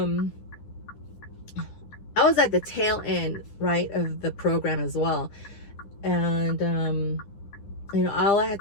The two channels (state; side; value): late; right; 9.9 ms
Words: I was at the tail end, right, of the program as well. And all I had